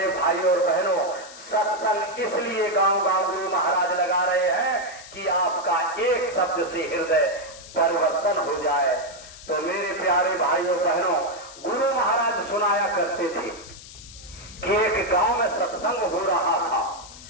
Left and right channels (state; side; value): noise; left; hiss, 17 dB below the sound